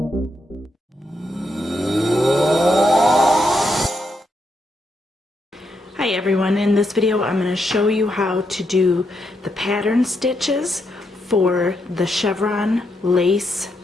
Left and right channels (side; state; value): both; normal; correlation 0.81